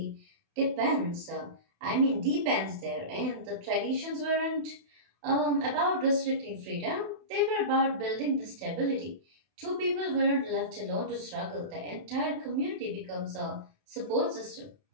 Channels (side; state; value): left; late; 31 ms